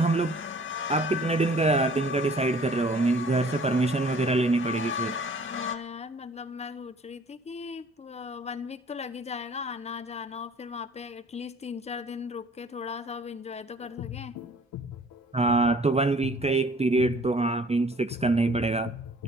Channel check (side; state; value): both; normal; correlation 0.53